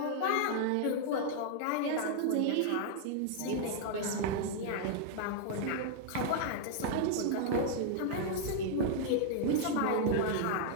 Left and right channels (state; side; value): different; both; correlation -0.01